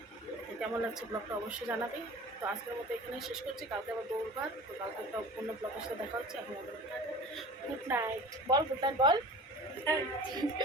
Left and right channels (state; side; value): normal; both; correlation 0.39